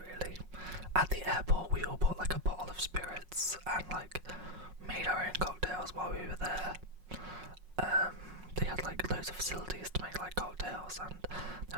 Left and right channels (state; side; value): late; left; 5.5 ms